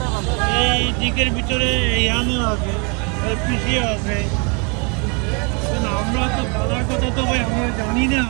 ভালো? এই দিকের ভিতরে ইয়ানেও আছে, পিসিও আছে। কিন্তু আমরা তো বাজার কথা তো ভাই আমরা জানি না,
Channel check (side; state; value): left; quieter; 33.5 dB